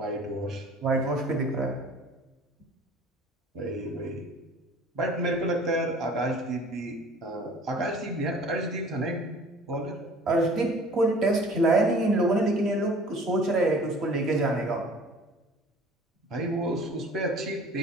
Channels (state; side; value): normal; both; correlation 0.48